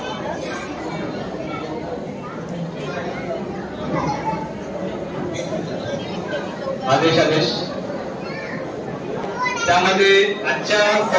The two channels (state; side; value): identical; both; correlation 1.00